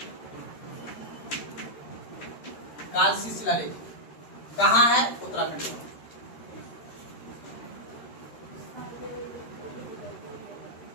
कालसी शिलालेख कहाँ है? उत्तराखंड में।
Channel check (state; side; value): late; right; 13 ms